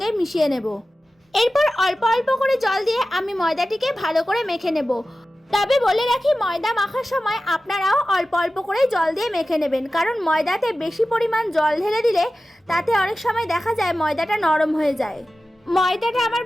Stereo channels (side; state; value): both; normal; correlation 0.95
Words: মিশিয়ে নেব। এরপর অল্প অল্প করে জল দিয়ে আমি ময়দাটিকে ভালো করে মেখে নেব। তবে বলে রাখি, ময়দা মাখার সময় আপনারাও অল্প অল্প করে জল দিয়ে মেখে নেবেন, কারণ ময়দাতে বেশি পরিমাণ জল ঢেলে দিলে তাতে অনেক সময় দেখা যায় ময়দাটা নরম হয়ে যায়। ময়দাটা আমার